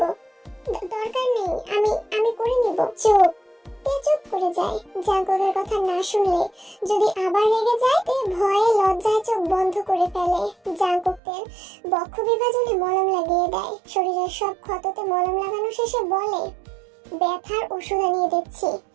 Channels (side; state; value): left; drops out; at 11.2 s